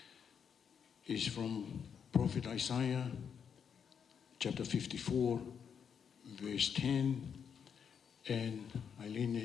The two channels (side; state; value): right; quieter; 7.3 dB